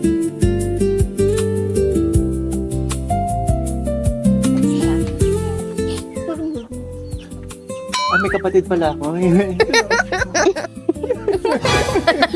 May kapatid pala ako.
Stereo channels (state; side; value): identical; both; correlation 1.00